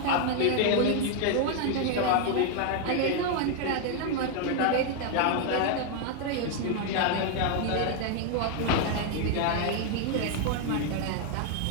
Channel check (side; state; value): both; different; correlation 0.00